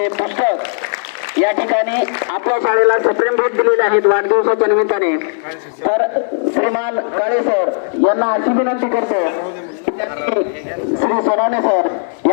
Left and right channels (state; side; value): silent; right; digital silence